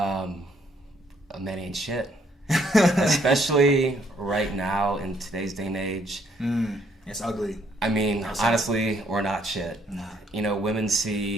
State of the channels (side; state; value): both; normal; correlation 0.68